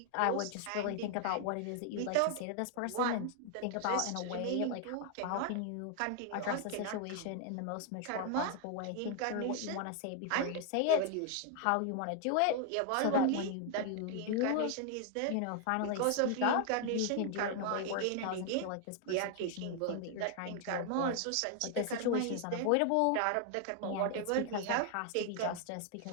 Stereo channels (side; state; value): both; different; correlation 0.00